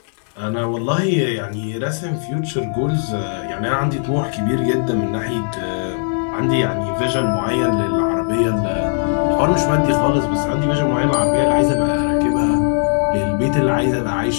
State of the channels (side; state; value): right; silent; digital silence